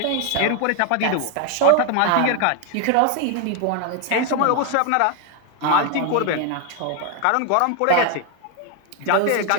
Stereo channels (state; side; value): different; both; correlation 0.01